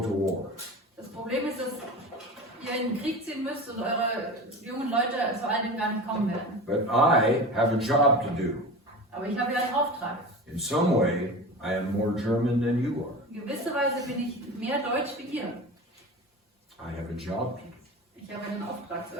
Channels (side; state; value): both; normal; correlation 0.31